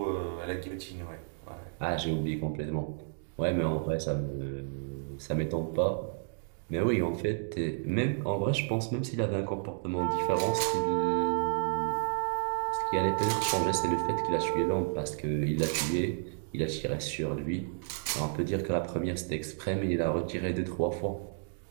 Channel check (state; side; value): silent; left; digital silence